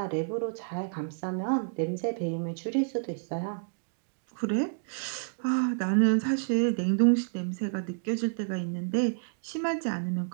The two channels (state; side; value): silent; left; digital silence